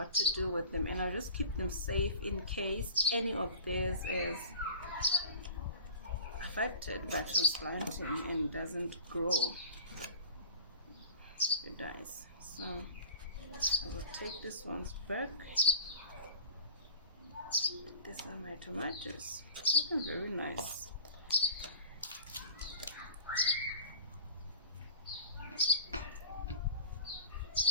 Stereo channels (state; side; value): inverted; both; correlation -0.41